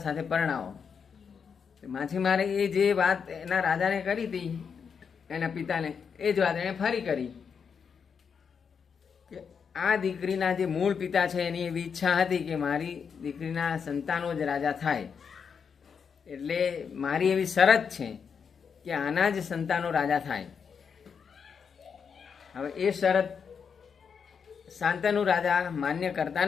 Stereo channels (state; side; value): quieter; right; 6.5 dB